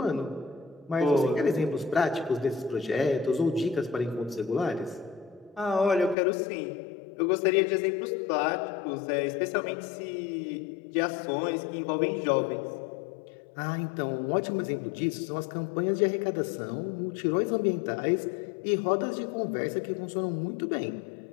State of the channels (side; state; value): right; drops out; at 6.2 s